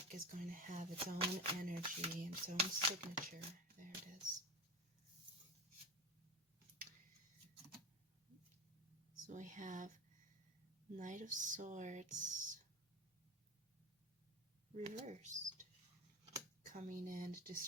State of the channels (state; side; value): normal; both; correlation 0.25